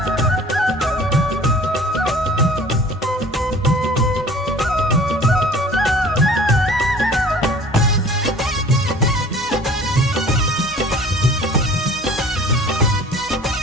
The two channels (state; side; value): normal; both; correlation 0.48